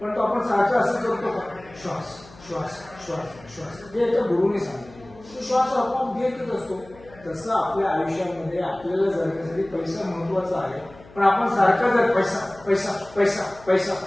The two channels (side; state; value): left; noise; hum, 22 dB below the sound